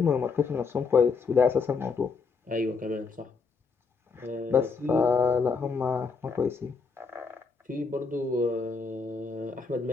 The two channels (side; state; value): right; quieter; 4.8 dB